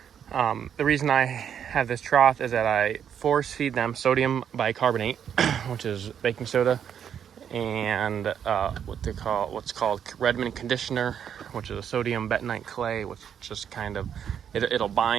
reason I have this trough is that I force feed them sodium bicarbonate, which is baking soda, and what's called Redmond conditioner, which is a sodium bentonite clay, which just kind of it'll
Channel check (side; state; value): left; quieter; 8.5 dB